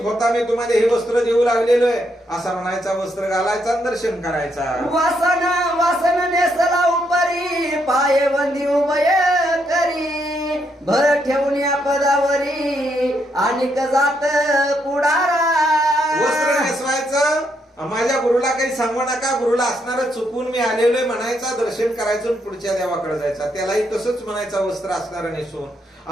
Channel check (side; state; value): both; normal; correlation 0.77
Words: होता मी तुम्हाला हे वस्त्र देऊ लागलेलो आहे असा म्हणायचा. वस्त्र घालायचा दर्शन करायचा. वासन नेसला उपरी पाये बंदी उभय करी. भर ठेवून या पदावरी आणि जात पुढारा. वस्त्र नेसवायचं माझ्या गुरुला काही सांगू नका. गुरुला असणार चुकून मी आलेलोय म्हणायचा. दर्शन करायचं पुढच्या देवाकडे जायचा. त्यालाही तसंच म्हणायचा वस्त्र असणार नेसून.